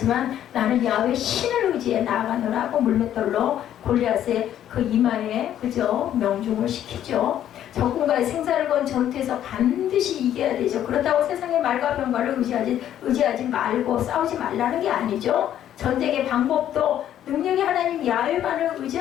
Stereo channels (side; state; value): right; quieter; 11.0 dB